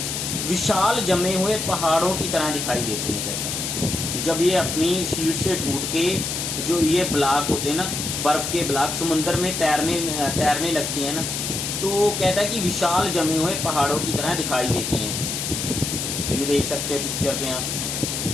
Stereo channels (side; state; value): left; noise; hiss, 3 dB below the sound